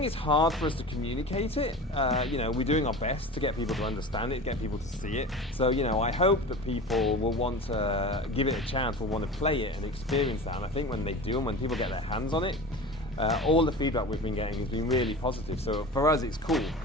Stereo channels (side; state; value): both; normal; correlation 0.34